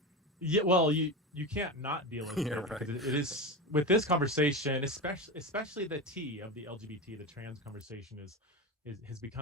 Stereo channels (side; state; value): both; normal; correlation 0.22